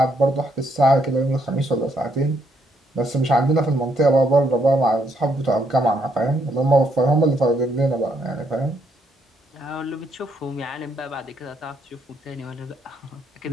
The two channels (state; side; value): normal; both; correlation 0.73